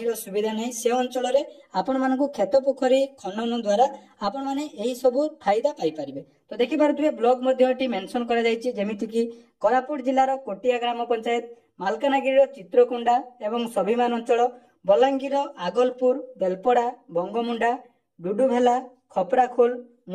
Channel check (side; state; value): both; identical; correlation 1.00